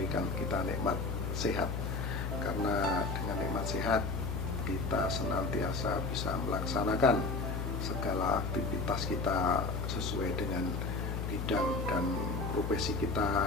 kita nikmat sehat. Karena dengan nikmat sehat kita senantiasa bisa melaksanakan segala aktivitas kita sesuai dengan bidang dan profesi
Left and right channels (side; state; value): left; noise; hum, 2 dB below the sound